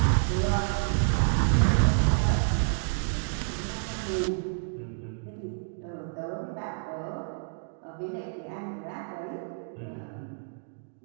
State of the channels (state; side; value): silent; left; digital silence